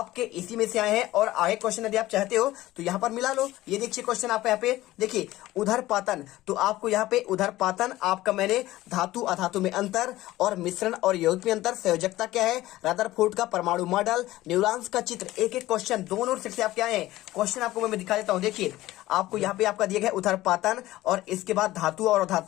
इसी में से आए हैं। और आगे क्वेश्चन यदि आप चाहते हो तो यहाँ पर मिला लो, ये देखिए क्वेश्चन आपका यहाँ पे देखिए उधरपातन। तो आपको यहाँ पे उधरपातन आपका मैंने धातु अधातु में अंतर और मिश्रण और यौगिक में अंतर, संयोजकता क्या है, रदरफोर्ड का परमाणु परमाणु मॉडल, न्यूरॉन्स का चित्र, एक एक क्वेश्चन दोनों सेट से आपके आए हैं। क्वेश्चन आपको मैं दिखा देता हूं। देखिए आपको यहाँ पे आपका दिया गया उथरपातन और इसके बाद धातु और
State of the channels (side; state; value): right; quieter; 16.5 dB